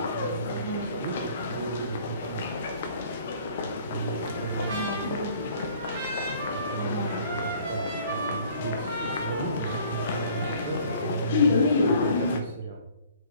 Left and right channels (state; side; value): inverted; both; correlation -0.54